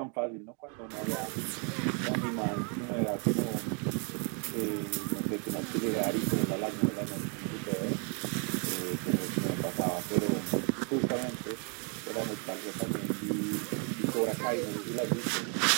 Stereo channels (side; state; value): left; quieter; 37.9 dB